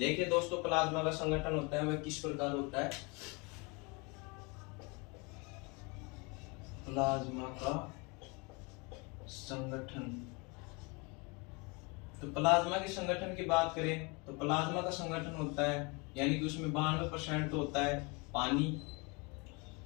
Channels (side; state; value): right; quieter; 29.3 dB